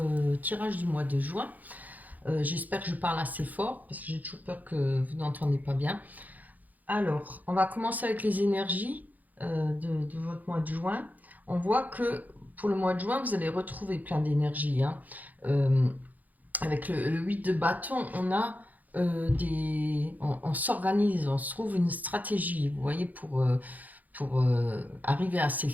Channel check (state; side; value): late; left; 0.081 ms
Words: tirage du mois de juin. J'espère que je parle assez fort parce que j'ai toujours peur que vous n'entendez pas bien. Alors, on va commencer avec les énergies de votre mois de juin. On voit que pour le mois de juin, vous allez retrouver plein d'énergie. Avec le 8 de bâton, on a on s'organise, on se trouve une stratégie, vous voyez, pour arriver à ses